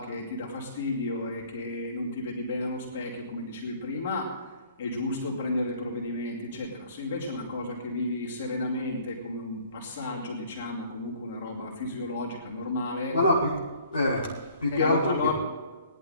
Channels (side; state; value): both; inverted; correlation -0.55